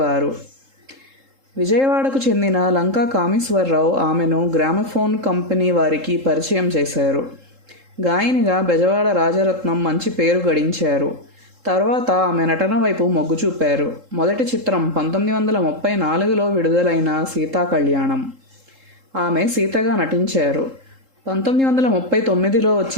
విజయవాడకు చెందిన లంకా కామేశ్వరరావు ఆమెను గ్రామఫోన్ కంపెనీ వారికి పరిచయం చేశారు. గాయనిగా బెజవాడ రాజరత్నం మంచి పేరు గడించారు. తర్వాత ఆమె నటన వైపు మొగ్గు చూపారు. మొదటి చిత్రం 1934లో విడుదలైన సీతాకళ్యాణం. ఆమె సీతగా నటించారు. 1939లో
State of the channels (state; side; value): late; left; 3.7 ms